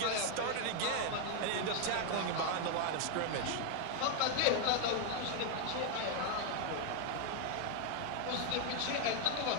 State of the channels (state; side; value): different; both; correlation 0.01